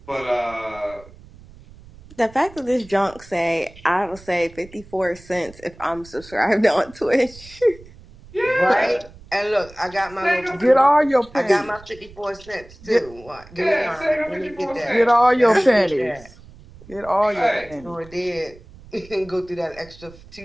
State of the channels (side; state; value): right; noise; rumble, 21 dB below the sound